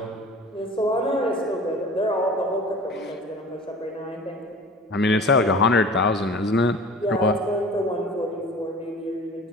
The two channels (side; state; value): both; normal; correlation 0.41